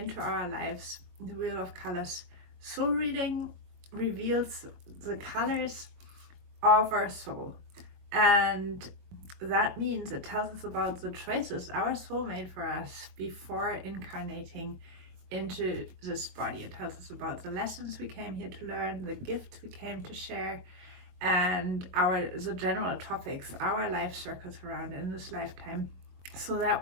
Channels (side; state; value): left; late; 22 ms